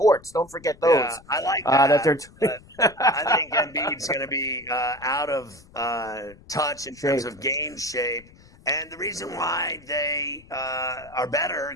Don't forget those. Yeah, I like that. I think Embiid's going to be out of touch in terms of game shape. And the reason why they are better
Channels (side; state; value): left; noise; rumble, 24 dB below the sound